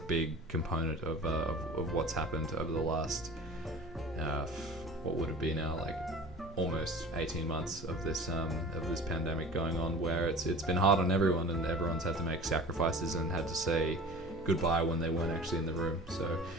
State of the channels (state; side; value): normal; both; correlation 0.41